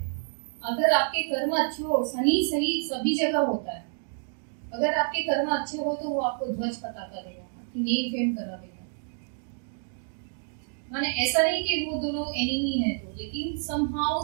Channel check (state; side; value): silent; left; digital silence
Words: अगर आपके कर्म अच्छे हो, शनि सही सभी जगह होता है, अगर आपके कर्म अच्छे हो तो वो आपको ध्वज पता करेगा, आपकी नेम फेम करा देगा। माने ऐसा नहीं कि वो दोनों एनिमी है तो, लेकिन समहाउ